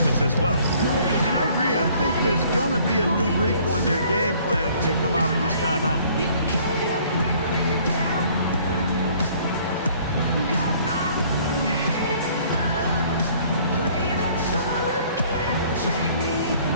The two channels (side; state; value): both; inverted; correlation -0.57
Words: as well. And I agree. I think there's going to be a new wrinkle in their game plan when they come out of this timeout.